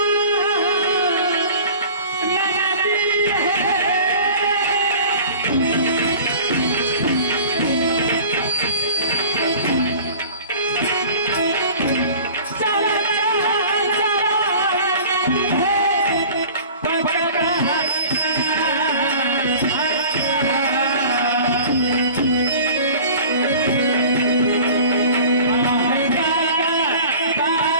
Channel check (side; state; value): both; inverted; correlation -0.43